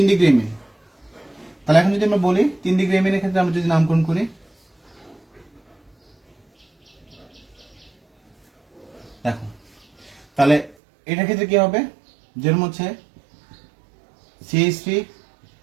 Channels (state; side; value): drops out; left; at 10.8 s